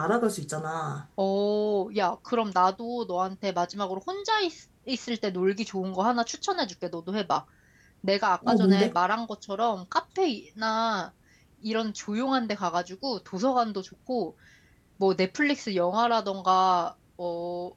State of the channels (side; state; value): both; identical; correlation 1.00